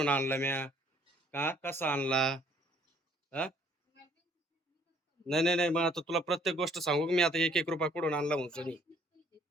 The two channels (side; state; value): both; normal; correlation 0.61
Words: आणला म्या का कसा आणला हा नाही नाही नाही मग आता तुला प्रत्येक गोष्ट सांगू मी आता 1-1 रुपया कुठून आणला म्हणून